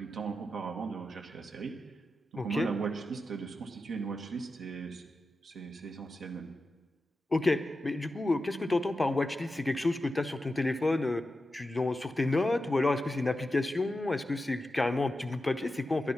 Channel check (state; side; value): normal; both; correlation 0.91